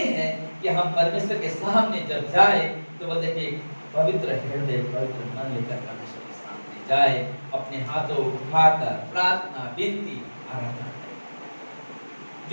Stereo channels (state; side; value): inverted; both; correlation -1.00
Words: है कि हम परमेश्वर के सामने जब जाए तो वो देखिए पवित्र हृदय, पवित्र मन लेकर परमेश्वर के सामने जाए, अपने हाथों उठाकर प्रार्थना, विनती, आराधना करें।